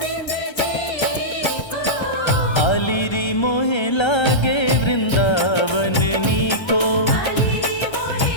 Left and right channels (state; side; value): late; right; 1.3 ms